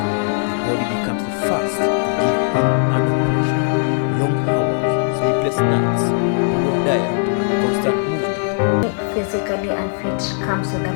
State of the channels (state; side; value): silent; right; digital silence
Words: The body becomes the first to give in under pressure. Long hours, sleepless nights, poor diet, and constant movement. Physically unfit comes with a